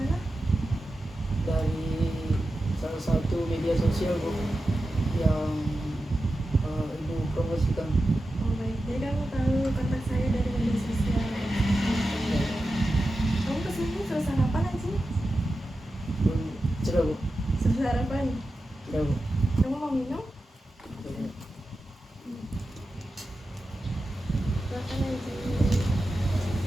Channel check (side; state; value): both; normal; correlation 0.92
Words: Dari salah satu media sosial Bu yang Ibu promosikan. Oh baik, jadi kamu tahu kontak saya dari media sosial. Kamu kesini sudah sarapan aja? Sudah Bu. Sudah sarapan? Sudah Bu. Kamu mau minum? Silakan aja.